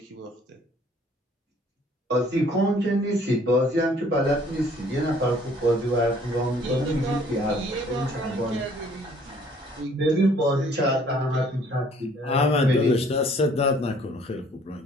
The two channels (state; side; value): normal; both; correlation 0.58